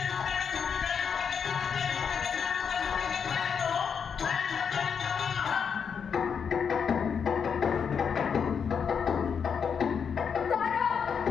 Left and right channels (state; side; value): quieter; right; 6.8 dB